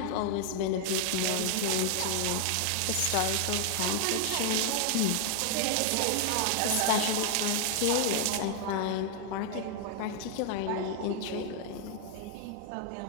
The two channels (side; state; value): both; different; correlation 0.00